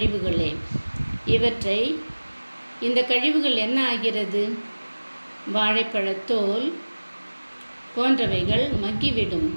இந்த கழிவுகள் என்ன ஆகிறது? வாழைப்பழத்தோல் போன்றவைகள் மக்கிவிடும்.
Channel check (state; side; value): inverted; both; correlation -1.00